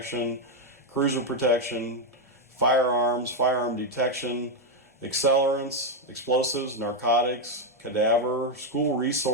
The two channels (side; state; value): both; normal; correlation 0.03